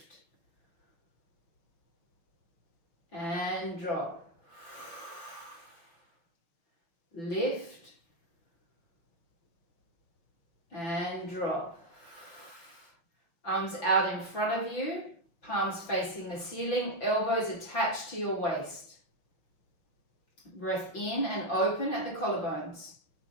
And drop. Lift. And drop. Arms out in front of you, palms facing the ceiling, elbows attached to your waist. Breath in and open at the collarbones.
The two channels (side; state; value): right; late; 5.9 ms